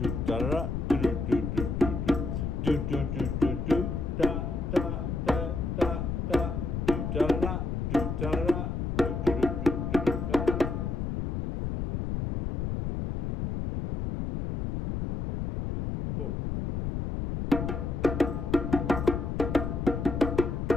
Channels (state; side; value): noise; left; rumble, 2 dB below the sound